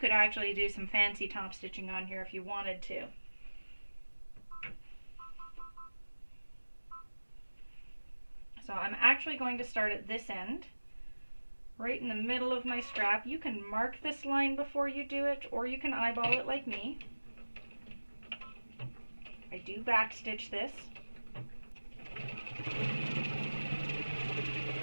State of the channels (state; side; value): inverted; both; correlation -1.00